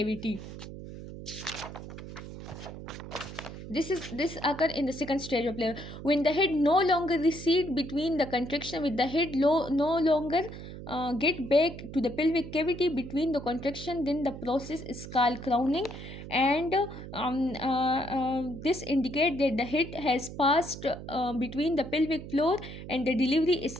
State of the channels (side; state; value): right; noise; hum, 11 dB below the sound